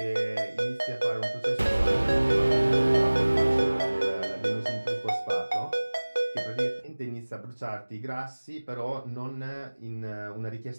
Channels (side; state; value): both; inverted; correlation -1.00